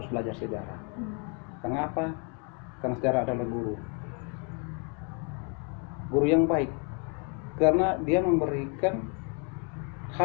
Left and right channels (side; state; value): right; quieter; 36.9 dB